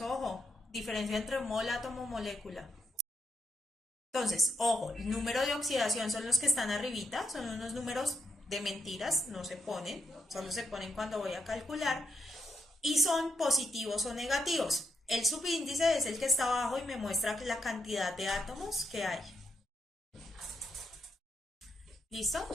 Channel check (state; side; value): normal; both; correlation 0.81